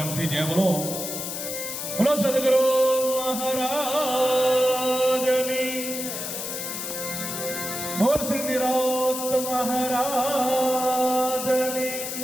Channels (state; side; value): noise; left; hiss, 5 dB below the sound